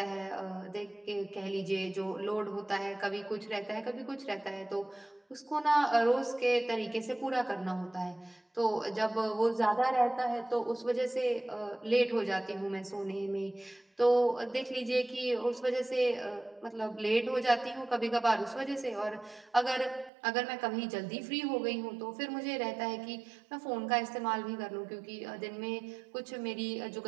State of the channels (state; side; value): drops out; left; at 20.1 s